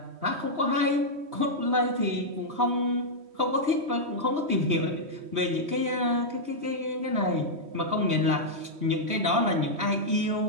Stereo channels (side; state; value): left; late; 3.1 ms